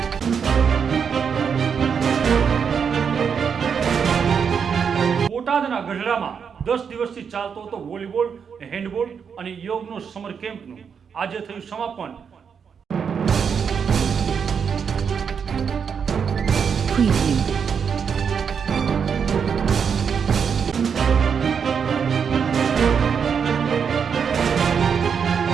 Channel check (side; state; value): left; quieter; 6.8 dB